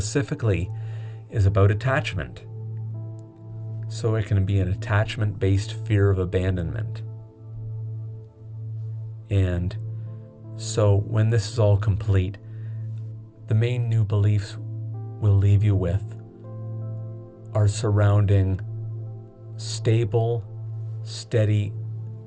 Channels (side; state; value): both; identical; correlation 1.00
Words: is about attachment. So it can be an attachment-based fear of abandonment. And so when this is all complete, the main new beliefs we'll leave you with are surrounding stable, steady